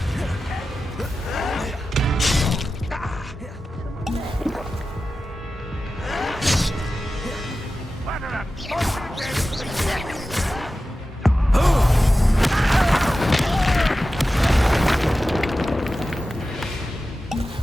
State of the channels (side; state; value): both; normal; correlation 0.94